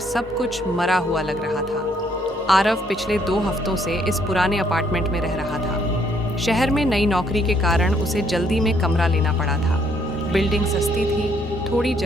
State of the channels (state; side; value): normal; both; correlation 0.68